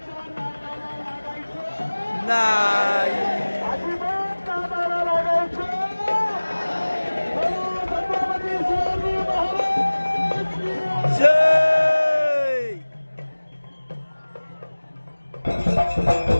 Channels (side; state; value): both; inverted; correlation -1.00